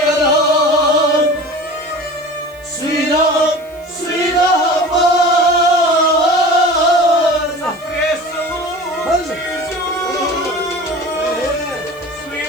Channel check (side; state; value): right; noise; hiss, 27 dB below the sound